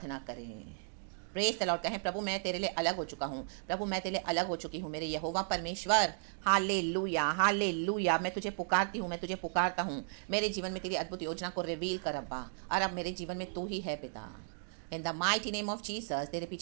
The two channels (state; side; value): silent; left; digital silence